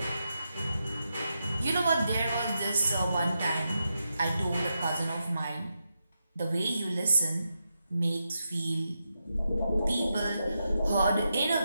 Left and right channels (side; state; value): both; inverted; correlation -0.86